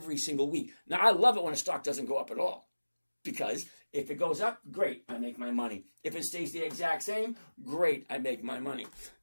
single week. Now, I love it when a stock doesn't go up at all. Because if it goes up, great, I make my money. If it stays the exact same, great, I make my money.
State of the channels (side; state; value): both; inverted; correlation -1.00